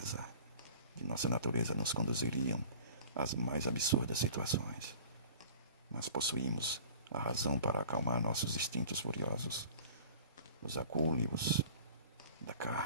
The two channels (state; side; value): inverted; both; correlation -0.43